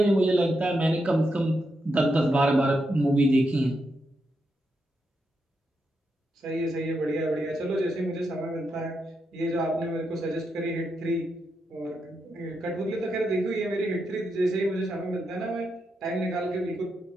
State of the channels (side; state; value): both; normal; correlation 0.84